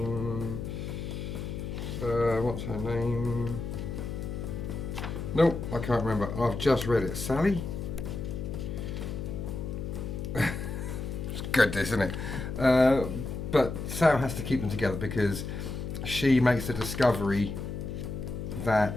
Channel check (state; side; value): noise; left; hum, 5 dB below the sound